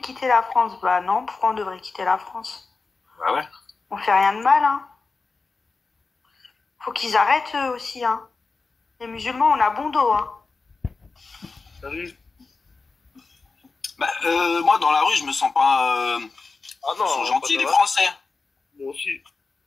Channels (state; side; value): quieter; right; 4.2 dB